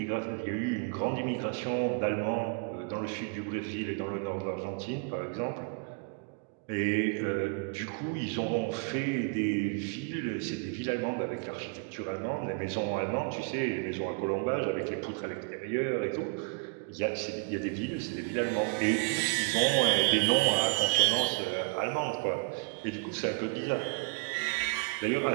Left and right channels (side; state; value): left; quieter; 33.9 dB